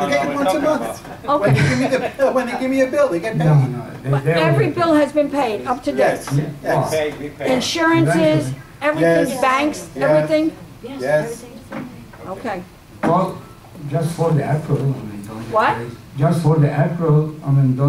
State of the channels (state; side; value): identical; both; correlation 1.00